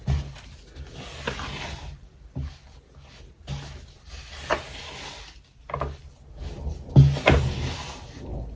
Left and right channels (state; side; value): identical; both; correlation 1.00